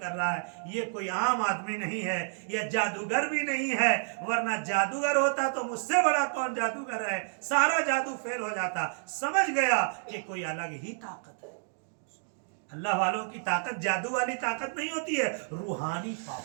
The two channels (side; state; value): left; silent; digital silence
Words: رہا ہے، یہ کوئی عام آدمی نہیں ہے، یہ جادوگر بھی نہیں ہے. ورنہ جادوگر ہوتا تو مجھ سے بڑا کون جادوگر ہے، سارا جادو فیل ہو جاتا. سمجھ گیا کہ کوئی الگ ہی طاقت ہے. اللہ والوں کی طاقت جادو والی طاقت نہیں ہوتی ہے، روحانی پاور